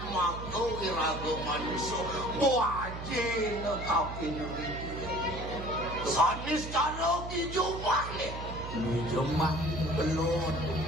mako irago maniso Wajin kapin sanis karo kijumah nih Kijumah belum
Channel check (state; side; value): noise; right; hum, 8 dB below the sound